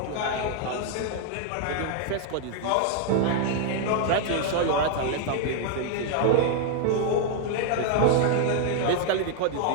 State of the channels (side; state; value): both; different; correlation 0.00